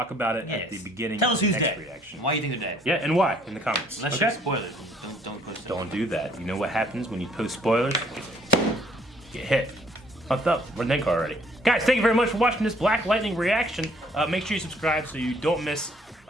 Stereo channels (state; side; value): normal; both; correlation 0.62